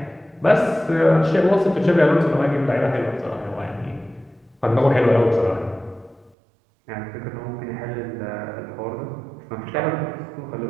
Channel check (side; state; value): left; drops out; at 6.3 s